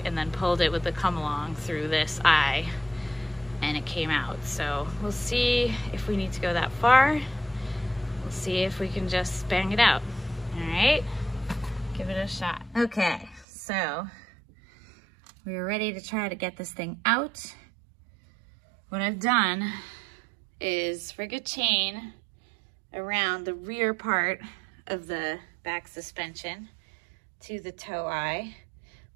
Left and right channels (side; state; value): left; drops out; at 13.5 s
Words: and then pulled it with the come along through this eye, and it came out. So we'll see if we need to go that far. We'll see if we can just bang it out. All right, give it a shot. Okay, so we're ready to try to get this thing out. What I've done is rig a chain around the rear part of the back suspension to the tow eye.